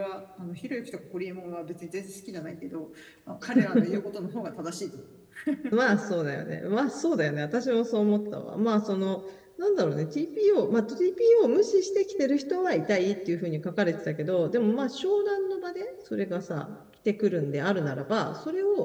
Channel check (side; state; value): both; identical; correlation 1.00